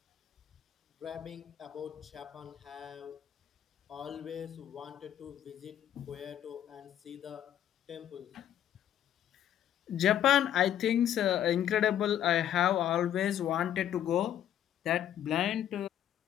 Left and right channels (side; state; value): right; quieter; 10.7 dB